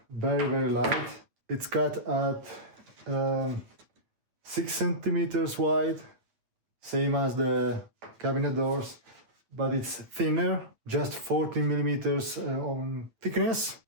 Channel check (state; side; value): late; left; 8.9 ms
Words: very light. It's cut at 6 centimeters wide, same as the cabinet doors, but it's thinner, just 14 millimeters on thickness.